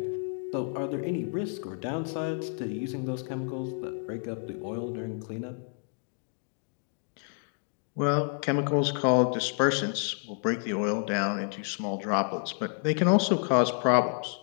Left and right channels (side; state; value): right; silent; 56 dB below the other